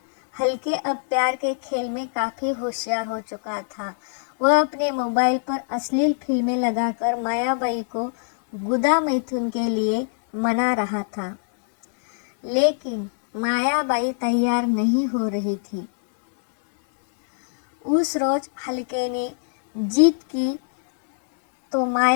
हल्के अब प्यार के खेल में काफ़ी होशियार हो चुका था। वह अपने मोबाइल पर अश्लील फिल्में लगाकर मायाबाई को गुदा मैथुन के लिए मना रहा था, लेकिन मायाबाई तैयार नहीं हो रही थी। उस रोज हल्के ने जीत की तो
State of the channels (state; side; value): silent; right; digital silence